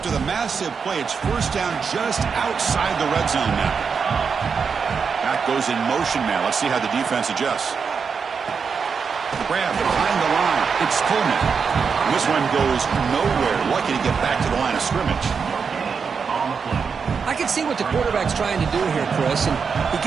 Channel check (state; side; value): quieter; left; 5.8 dB